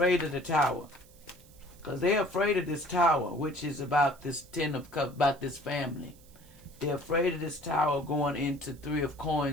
of the tower. Because they're afraid of this tower, which is about this 10 of cups, about this family. They're afraid of this tower going into 3 of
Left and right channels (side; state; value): right; noise; hiss, 26 dB below the sound